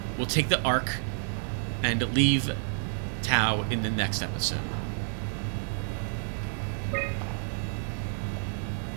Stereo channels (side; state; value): left; silent; 58 dB below the other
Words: We'll take the Ark and leave Tau in the next episode.